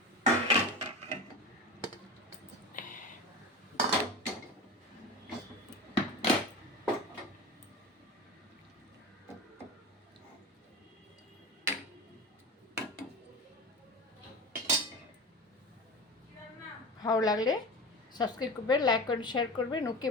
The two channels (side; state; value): both; normal; correlation 0.29